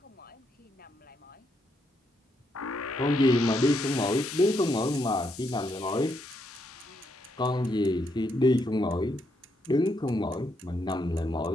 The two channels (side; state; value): both; normal; correlation 0.77